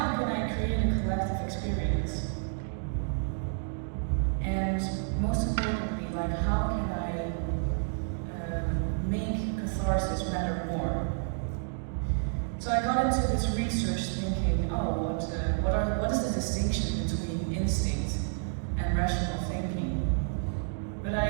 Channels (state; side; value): silent; left; digital silence